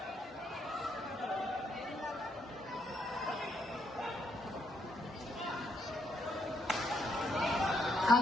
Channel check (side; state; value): both; normal; correlation 0.75